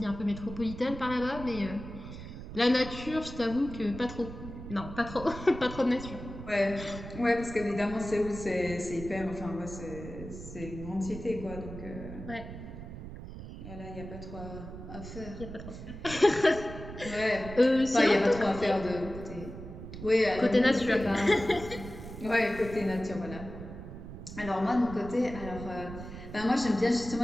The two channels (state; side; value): noise; right; rumble, 11 dB below the sound